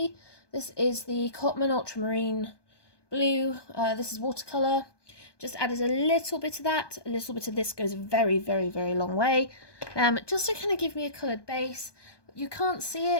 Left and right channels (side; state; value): right; late; 1.2 ms